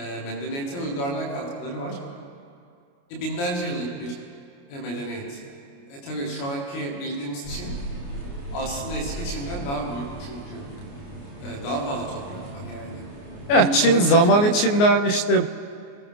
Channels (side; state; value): right; late; 29 ms